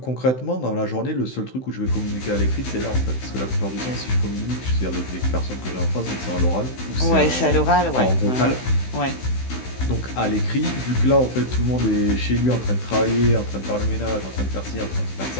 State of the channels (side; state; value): right; late; 16 ms